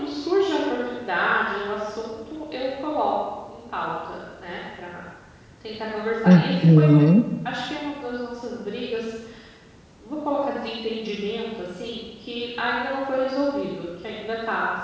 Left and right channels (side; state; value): both; identical; correlation 1.00